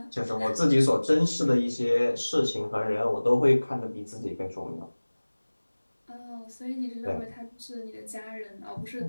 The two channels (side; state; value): both; inverted; correlation -1.00